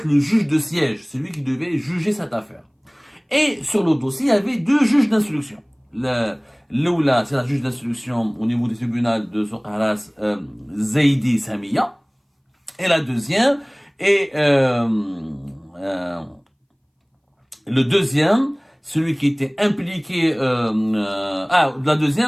le juge de siège. C'est lui qui devait juger cette affaire. Et sur le dossier, il y avait deux juges d'instruction. L'oula, c'est la juge d'instruction au niveau du tribunal de Soukharas, Zaidi Samia. Et la deuxième, le deuxième, celui qui était impliqué, le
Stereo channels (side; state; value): both; identical; correlation 1.00